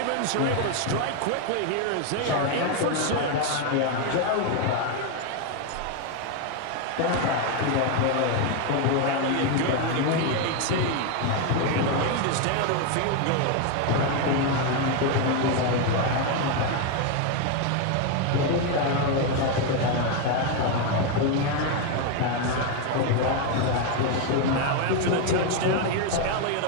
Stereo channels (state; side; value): different; both; correlation 0.01